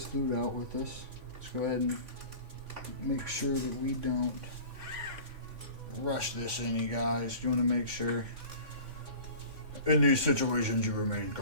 loot out with us. Let's go ahead and make sure that we don't rush this in, you guys. You want to make sure in these situations you remain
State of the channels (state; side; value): late; left; 3.5 ms